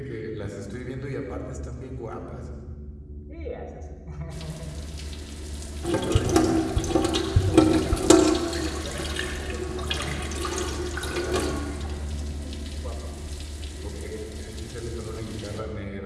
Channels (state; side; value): identical; both; correlation 1.00